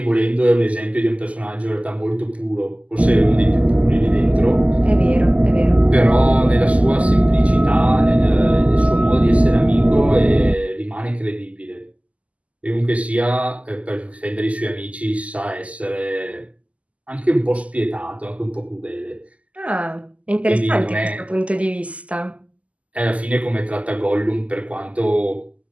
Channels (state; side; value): late; left; 0.068 ms